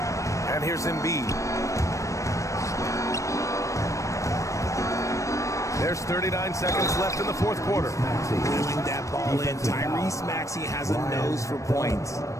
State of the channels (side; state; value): right; late; 0.15 ms